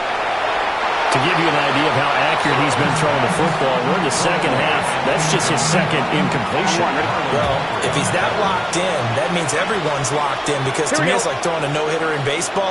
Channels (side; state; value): both; identical; correlation 1.00